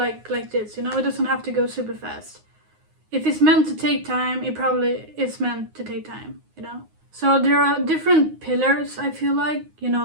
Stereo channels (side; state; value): left; late; 9.5 ms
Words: this, It doesn't have to go super fast. If it's meant to take time, it probably is meant to take time, So there are different pillars, I feel like,